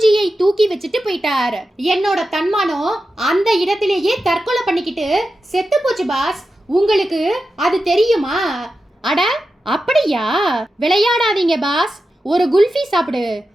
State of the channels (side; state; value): both; normal; correlation 0.91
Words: தூக்கி வச்சுட்டு போயிட்டார். என்னோட தன்மானம் அந்த இடத்திலேயே தற்கொலை பண்ணிக்கிட்டு செத்து போச்சு பாஸ். உங்களுக்கு அது தெரியுமா? அட அப்படியா? விளையாடாதீங்க பாஸ். ஒரு குல்ஃபி சாப்பிடு,